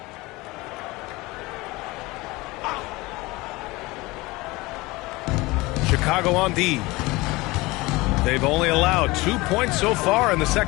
Chicago on D. They've only allowed 2 points so far in the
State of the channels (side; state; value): right; quieter; 21.9 dB